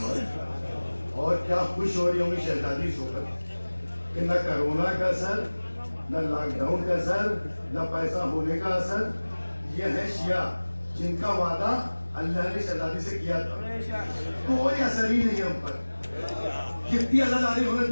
اور کیا خوش ہو رہی ہوں گی شہزادی سو کر کہ نہ کرونا کا اثر نہ لاک ڈاؤن کا اثر نہ پیسہ ہونے کا اثر. یہ ہے شیعہ جن کا وعدہ اللہ نے شہزادی سے کیا تھا کوئی اثر ہی نہیں ہم پر. کتنی عزاداری ہونے تو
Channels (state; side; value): inverted; both; correlation -1.00